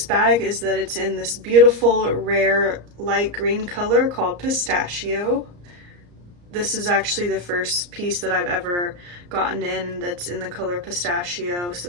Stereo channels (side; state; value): left; late; 34 ms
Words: bag is that it's in this beautiful rare light green color called Pistachio. This is actually the first piece that I've ever gotten in that's in the color Pistachio, so